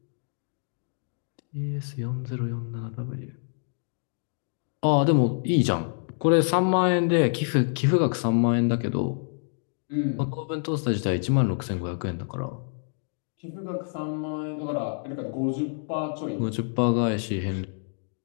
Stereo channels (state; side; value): silent; right; digital silence